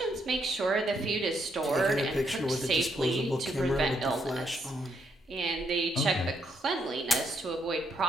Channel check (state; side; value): normal; both; correlation 0.76